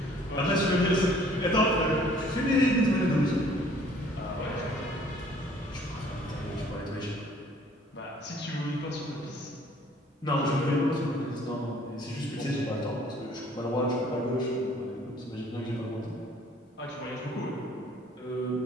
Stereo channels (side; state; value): both; normal; correlation 0.57